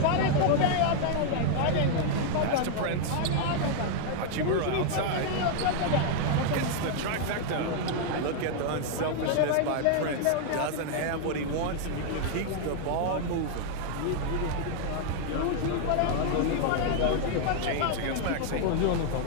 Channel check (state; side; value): different; both; correlation 0.00